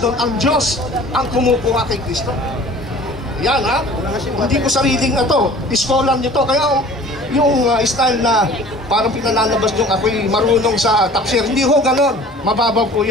ang Diyos ang kumukuha kay Kristo. Yan hindi ko sariling na to, scholar nyo to. Kaya yung style na parang pinalalabas yung ako'y marunong sa tafsir, hindi ho ganon, mababaw po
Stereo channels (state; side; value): normal; both; correlation 0.46